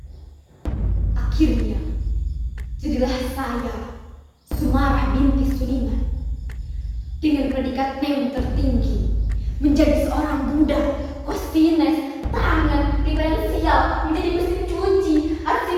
Akhirnya, jadilah saya, Sumarah binti Suliman, dengan predikat NEM tertinggi, menjadi seorang budak, kosines, tangan, diferensial, menjadi mesin cuci,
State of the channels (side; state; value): both; identical; correlation 1.00